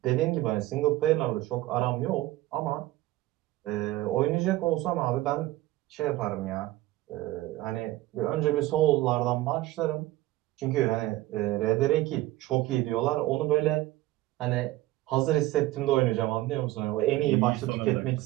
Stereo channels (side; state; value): left; quieter; 16.9 dB